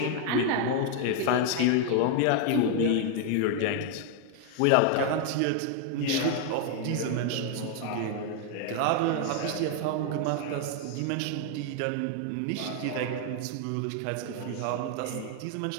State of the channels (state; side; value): different; both; correlation 0.00